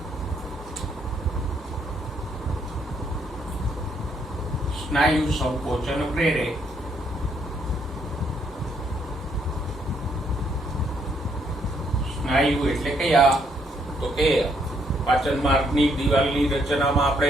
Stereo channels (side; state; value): both; normal; correlation 0.72